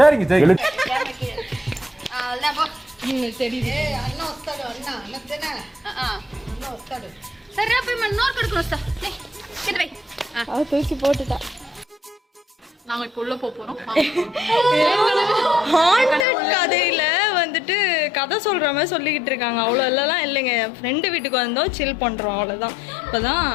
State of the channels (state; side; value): drops out; right; at 16.2 s